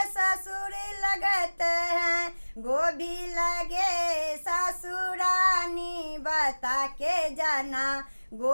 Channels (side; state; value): both; inverted; correlation -1.00